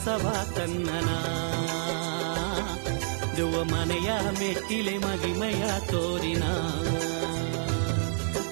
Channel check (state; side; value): silent; left; 56 dB below the other